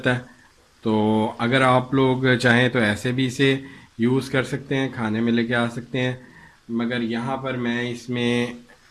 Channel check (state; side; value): identical; both; correlation 1.00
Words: है, तो अगर आप लोग चाहें तो ऐसे भी इसे यूज़ कर सकते हैं, खाने में लेके आ सकते हैं। मगर यहाँ पर मैं इसमें